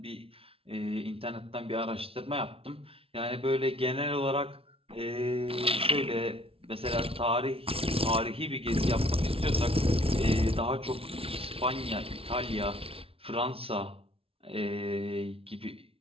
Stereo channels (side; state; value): left; late; 0.27 ms